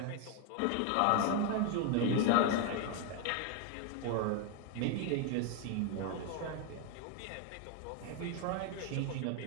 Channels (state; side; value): different; both; correlation 0.01